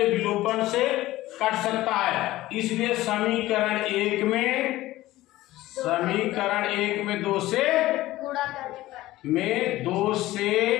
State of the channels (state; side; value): quieter; right; 16.6 dB